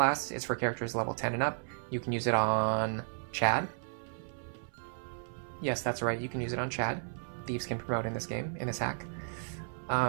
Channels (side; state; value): left; silent; 55 dB below the other